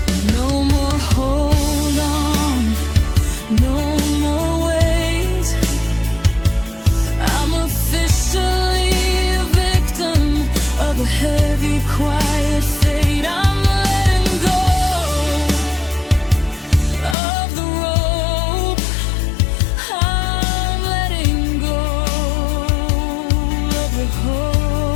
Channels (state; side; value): drops out; right; at 17.2 s